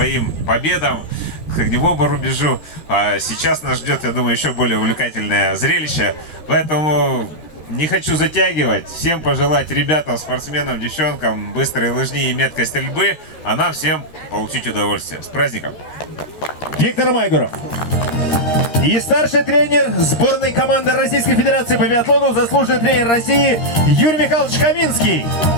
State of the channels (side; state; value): right; late; 13 ms